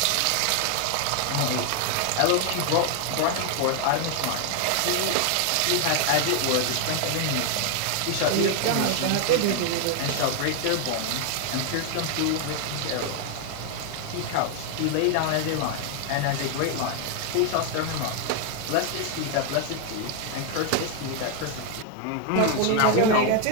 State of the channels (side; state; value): both; different; correlation 0.00